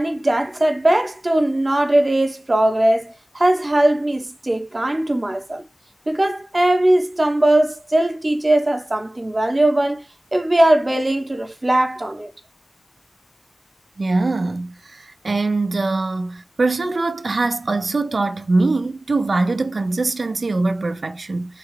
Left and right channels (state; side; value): normal; both; correlation 0.98